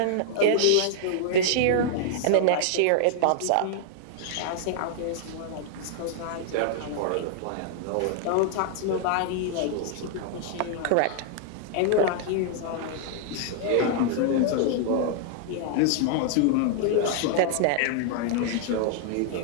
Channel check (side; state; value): both; different; correlation -0.01